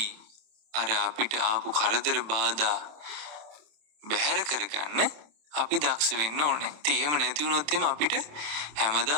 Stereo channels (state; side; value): late; left; 27 ms